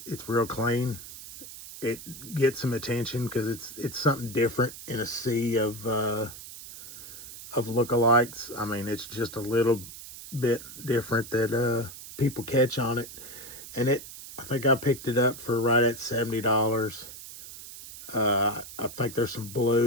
It's real clean. It gets some attention because it's something different in a sea of lookalikes. I mean, it's just a little bit different that people catch on it. And I think I picked it up for right at $70. I think there's some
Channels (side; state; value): right; noise; hiss, 14 dB below the sound